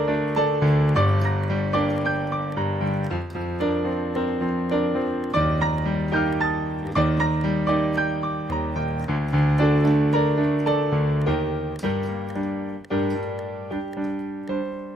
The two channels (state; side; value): normal; both; correlation 0.76